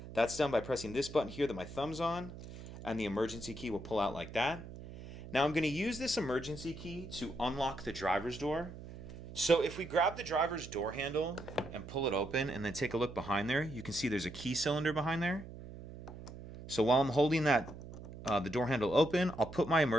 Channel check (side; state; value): right; noise; hum, 13 dB below the sound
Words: That's done by pressing this button here that my thumb's on, and the emergency key will pull out like that. Now I'm going to use this emergency key to unlock the driver's door. So if we grab the driver's door handle and pull it open and then take a look behind there, you can see there's a key cylinder behind there. So while I'm holding that the door handle open, I'll put my